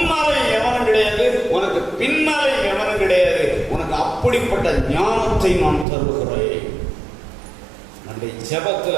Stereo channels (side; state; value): left; drops out; at 5.9 s